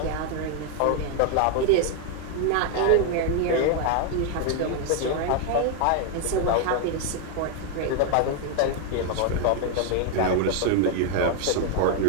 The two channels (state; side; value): different; both; correlation 0.00